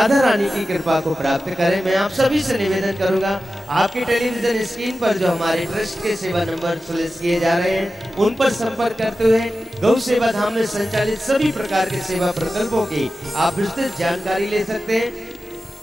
रानी की कृपा को प्राप्त करें। मैं आप सभी से निवेदन करूंगा, आपके टेलीविजन स्क्रीन पर जो हमारे ट्रस्ट के सेवा नंबर सुलिस किए जा रहे हैं, उन पर संपर्क करते हुए गौ सेवा धाम में संचालित सभी प्रकार के सेवा प्रकल्पों की आप विस्तृत जानकारी ले सकते हैं।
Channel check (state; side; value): normal; both; correlation 0.93